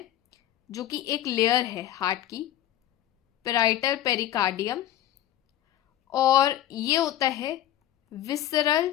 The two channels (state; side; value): quieter; right; 12.7 dB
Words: जो कि एक लेयर है हार्ट की, पेराइटल पेरिकार्डियम। और ये होता है